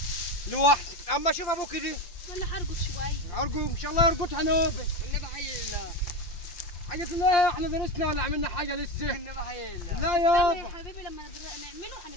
لوحدك. اما شوف ابوكي دي ولا هرقد شويه. ارجو ان شاء الله يرقدها نوبه. النبي حي الله. حاجة الله احنا درسنا ولا عملنا حاجة لسه؟ النبي حي الله. لا استنى يابا يا حبيبي لما نعمله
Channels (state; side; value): late; right; 5.7 ms